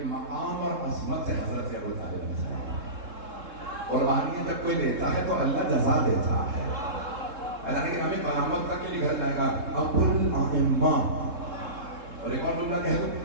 مقام اور عظمت سے حضرت ابو طالب علیہ السلام قربانیاں جب کوئی دیتا ہے تو اللہ جزا دیتا ہے۔ اللہ نے کہ ہمیں قیامت تک کے لیے گھر جائے گا ابو الائمہ۔ اور ایک اور جملہ کہہ دوں،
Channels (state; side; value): late; left; 3.7 ms